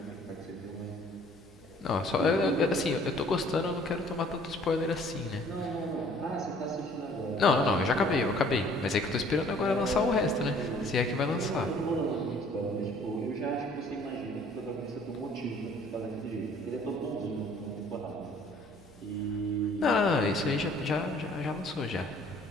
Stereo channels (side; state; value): both; normal; correlation 0.56